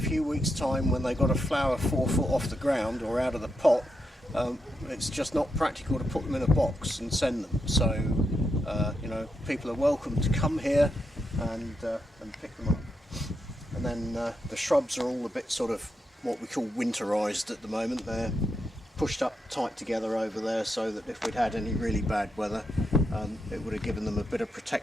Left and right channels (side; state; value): both; normal; correlation 0.83